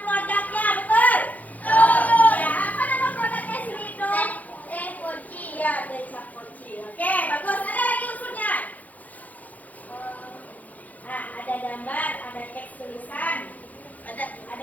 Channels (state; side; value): late; right; 0.078 ms